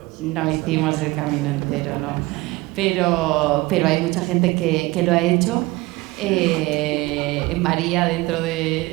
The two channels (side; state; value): left; quieter; 21.3 dB